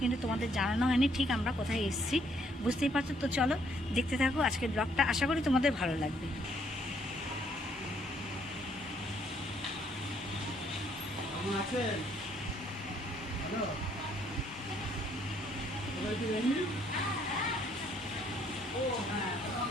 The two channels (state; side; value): normal; both; correlation 0.67